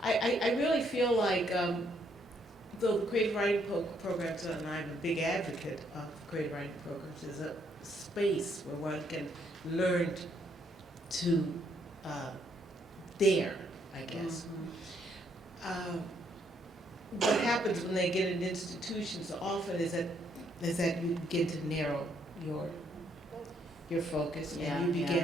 I really feel like, though the creative writing programs, and I'm a big advocate of creative writing programs, is a space where one can learn to dare, I guess. What happens when they get in institutions often is that you begin to narrow your focus, and you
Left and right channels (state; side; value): normal; both; correlation 0.71